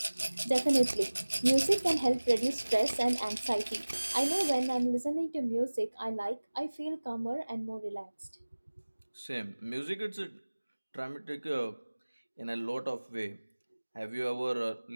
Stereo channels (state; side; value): inverted; both; correlation -1.00